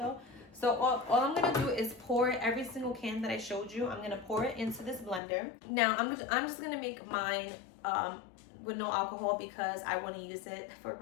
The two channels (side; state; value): right; drops out; at 5.2 s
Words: So all I'm gonna do is pour every single can that I showed you. I'm gonna pour it into this blender. Now I'm just gonna make mine with no alcohol because I want to use it for